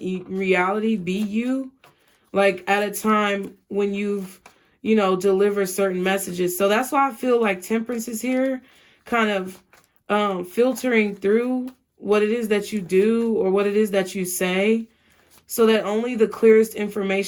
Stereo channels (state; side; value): identical; both; correlation 1.00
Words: reality, be you, like at a time when you've, you know, deliver certain messages. So that's why I feel like Temperance is here, kind of filtering through what it is that you do or what it is that you say, so that only the clearest